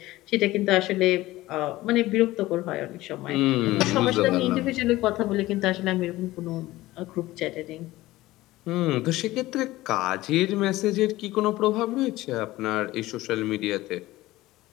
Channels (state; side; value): quieter; right; 17.5 dB